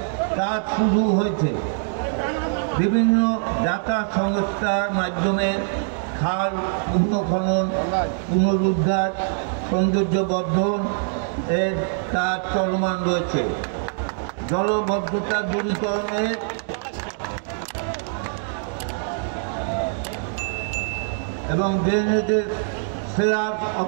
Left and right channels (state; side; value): silent; left; digital silence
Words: কাজ শুরু হয়েছে। বিভিন্ন যাতায়াত সংস্থার মাধ্যমে খাল পুনঃখনন, পুনরুদ্ধার, সৌন্দর্যবর্ধন এর কাজ চলমান রয়েছে। জলবদ্ধতা দূরীকরণের এবং ড্রেনেজের স্ল্যাব